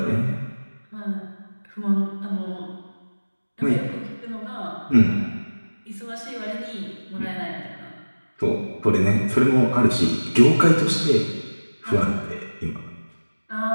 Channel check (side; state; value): both; inverted; correlation -1.00